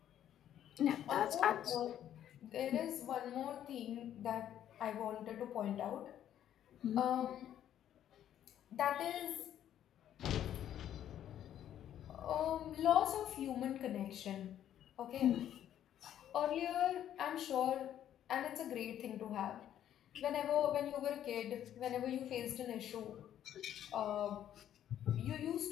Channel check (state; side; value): quieter; right; 10.8 dB